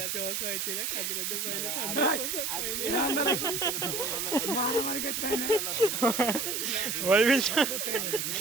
মারামারি করতে হয় না ওই বলছো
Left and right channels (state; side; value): noise; right; hiss, 1 dB below the sound